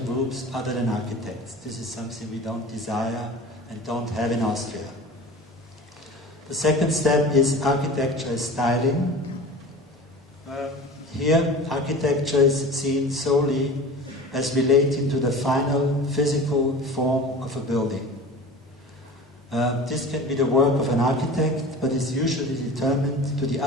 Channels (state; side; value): normal; both; correlation 0.37